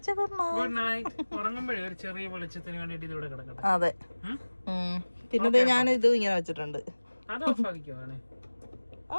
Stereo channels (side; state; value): both; inverted; correlation -1.00